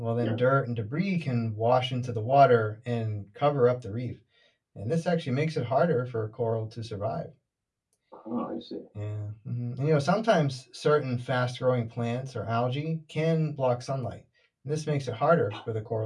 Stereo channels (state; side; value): identical; both; correlation 1.00